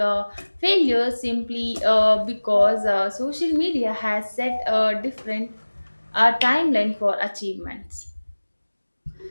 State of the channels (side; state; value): both; inverted; correlation -1.00